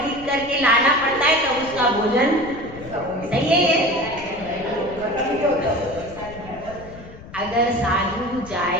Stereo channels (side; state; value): left; noise; rumble, 17 dB below the sound